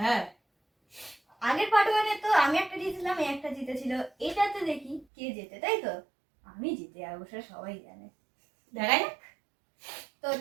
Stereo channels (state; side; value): drops out; left; at 5.1 s